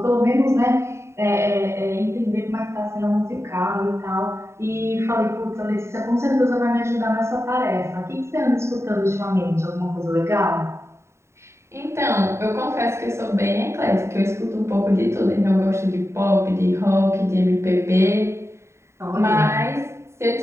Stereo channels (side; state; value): left; late; 0.13 ms